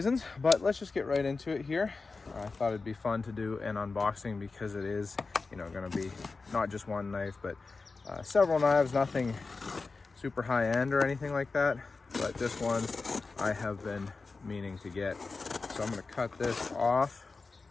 but let's just get right into it here. I thought it'd be fun to do an unboxing because it is, going to be not just one knife, but several knives, nothing super high end or anything like that, but this one I have been meaning to get. So I'm going to cut this off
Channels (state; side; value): quieter; right; 4.1 dB